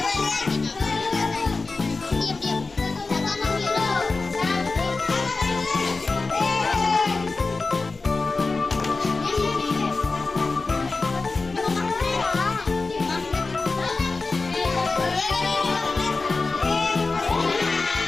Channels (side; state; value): right; quieter; 3.8 dB